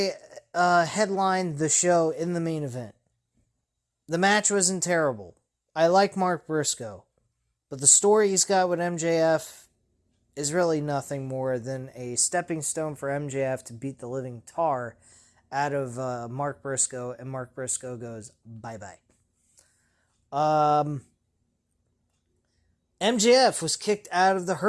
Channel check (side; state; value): both; identical; correlation 1.00